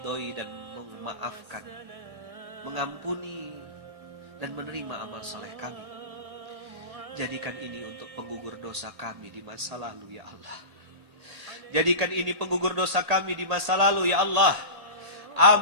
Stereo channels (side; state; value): left; late; 1.8 ms